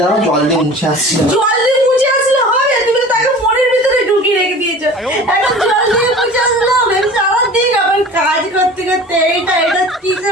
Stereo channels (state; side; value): normal; both; correlation 0.41